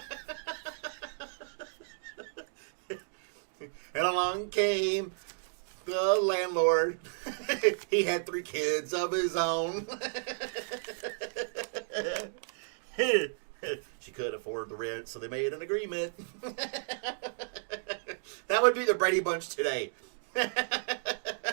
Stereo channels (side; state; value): left; silent; digital silence